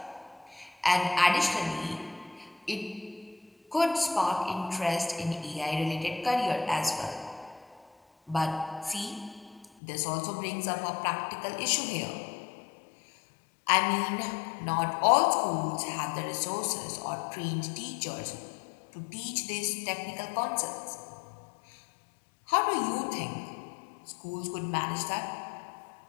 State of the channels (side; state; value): right; drops out; at 9.7 s